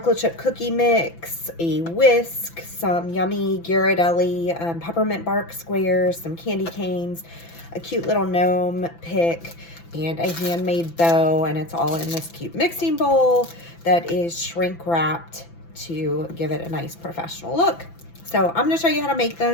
chip cookie mix, a whisk, some yummy Ghirardelli peppermint bark squares, some candy canes, a cute little gnome pick, and a handmade bow, and it's all in this cute mixing bowl that is shrink wrapped to give it a nice professional look. So I'm going to show you how to make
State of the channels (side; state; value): right; late; 5.9 ms